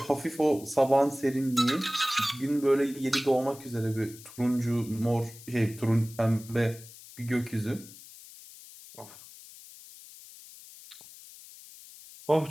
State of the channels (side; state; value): left; noise; hiss, 18 dB below the sound